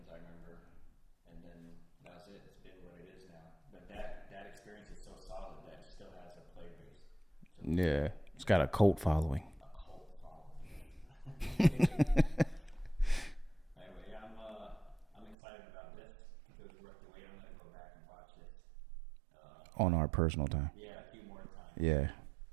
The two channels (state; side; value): drops out; left; at 15.4 s